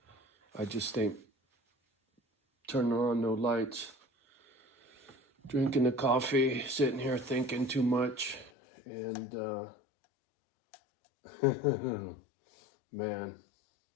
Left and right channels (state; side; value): drops out; right; at 8.5 s